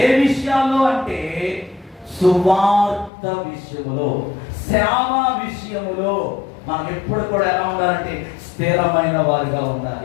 ఏ విషయాల్లో అంటే సువార్త విషయములో, సేవ విషయములో మనం ఎప్పుడు కూడా ఎలా ఉండాలంటే స్థిరమైన వారిగా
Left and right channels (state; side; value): drops out; right; at 3.1 s